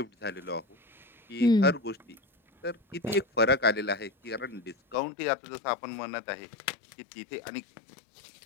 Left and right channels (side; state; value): right; drops out; at 5.0 s